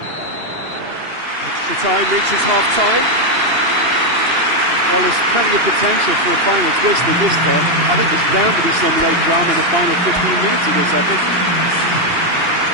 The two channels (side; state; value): left; late; 2.8 ms